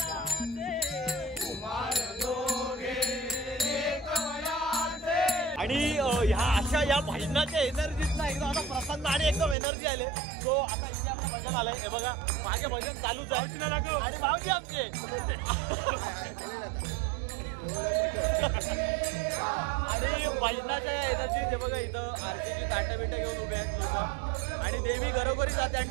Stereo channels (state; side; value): drops out; left; at 9.6 s